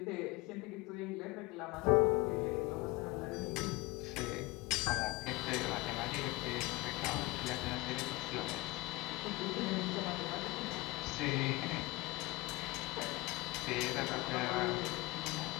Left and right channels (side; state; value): right; quieter; 22.7 dB